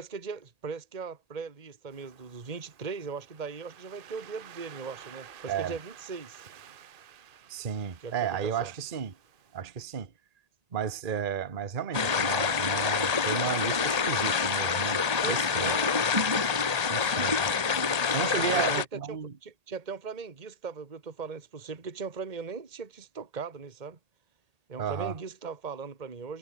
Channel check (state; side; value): late; left; 1.8 ms